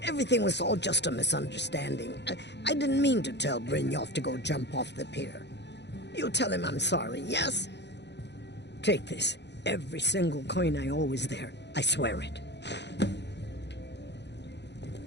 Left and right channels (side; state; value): right; late; 0.50 ms